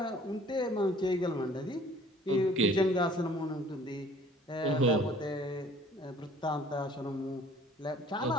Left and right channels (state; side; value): normal; both; correlation 0.53